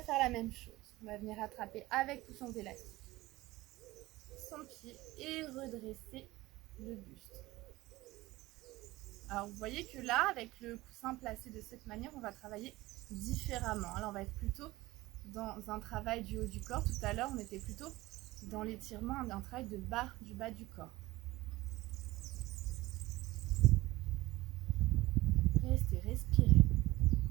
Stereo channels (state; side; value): quieter; left; 18.8 dB